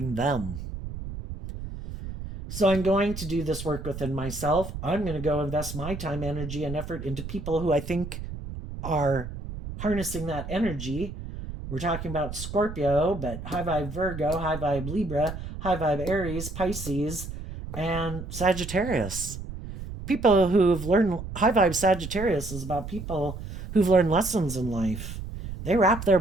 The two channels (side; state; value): right; noise; rumble, 9 dB below the sound